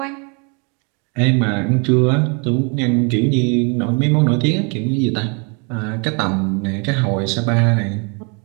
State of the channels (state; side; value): quieter; left; 34.5 dB